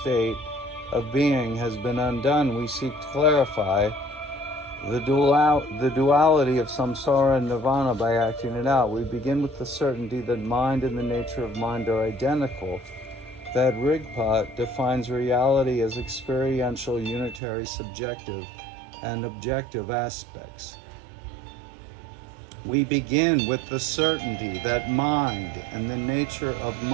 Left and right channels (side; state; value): left; drops out; at 17.4 s